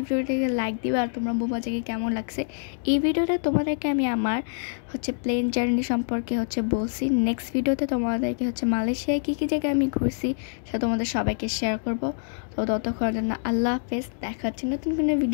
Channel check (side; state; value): right; silent; digital silence